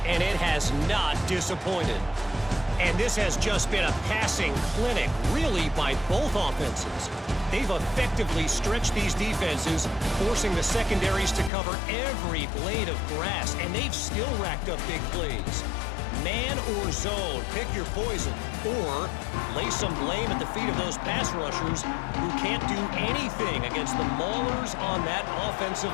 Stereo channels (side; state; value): right; drops out; at 11.5 s